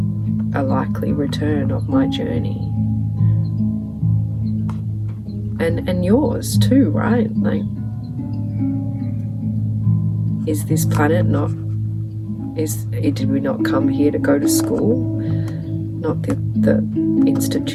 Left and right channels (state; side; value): identical; both; correlation 1.00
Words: a likely return of my journey, and yours too, right? Like, is this planet not, did we not come here to go to school? Not the